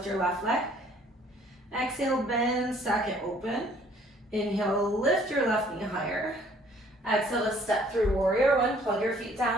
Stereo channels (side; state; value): both; normal; correlation 0.59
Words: your left leg. Exhale, bend, second open. Inhale, lift your left knee higher. Exhale to step through warrior one, plug your feet